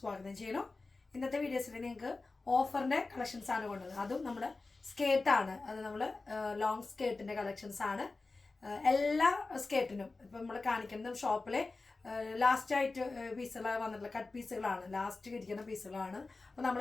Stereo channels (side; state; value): right; quieter; 3.6 dB